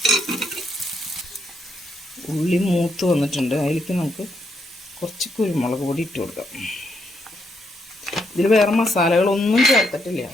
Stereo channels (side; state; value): both; normal; correlation 0.77